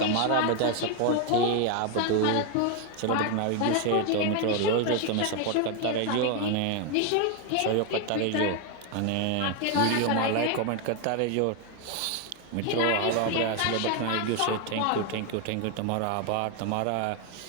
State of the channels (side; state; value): both; different; correlation 0.01